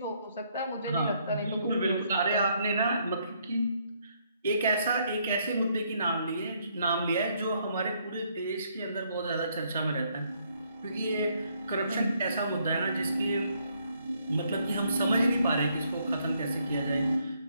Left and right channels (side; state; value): both; inverted; correlation -0.71